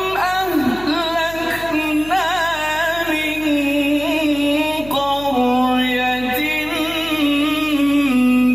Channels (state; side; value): noise; left; hum, 17 dB below the sound